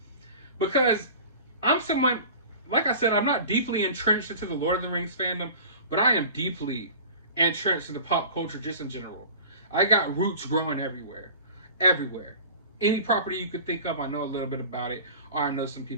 Because I'm someone, like I said, I'm not deeply entrenched into the Lord of the Rings fandom, but I am deeply entrenched into pop culture just in general. I got roots growing everywhere. Everywhere. Any property you could think of, I know a little bit about it, or I know some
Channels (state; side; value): inverted; both; correlation -0.39